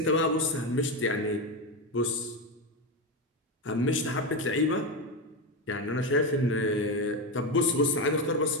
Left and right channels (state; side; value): normal; both; correlation 0.13